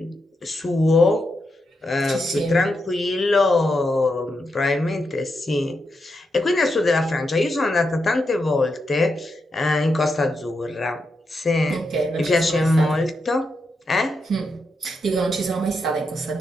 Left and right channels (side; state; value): both; normal; correlation 0.84